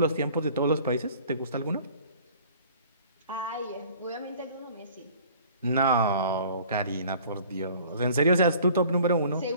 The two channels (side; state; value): both; inverted; correlation -0.50